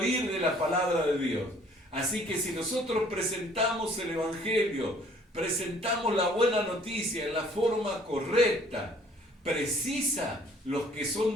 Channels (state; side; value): normal; both; correlation 0.58